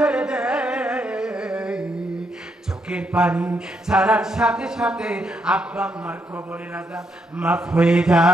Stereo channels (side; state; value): both; normal; correlation 0.78